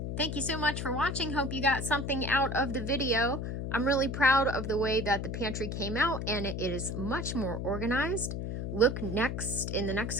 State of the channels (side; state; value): left; noise; hum, 4 dB below the sound